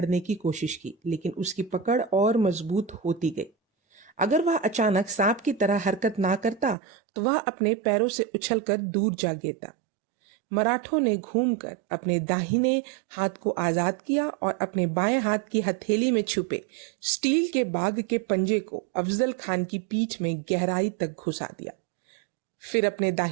की कोशिश की, लेकिन उसकी पकड़ और मजबूत होती गई। अगर वह अचानक सांप की तरह हरकत ना करता तो वह अपने पैरों से उछलकर दूर जा गिरता। मराठों ने घूमकर अपने दाहिने हाथ को आजाद किया और अपने बाएं हाथ की हथेली में छुपे स्टील के बाग के पंजे को अफजल खान की पीठ में गहराई तक घुसा दिया। फिर अपने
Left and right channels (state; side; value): drops out; left; at 6.8 s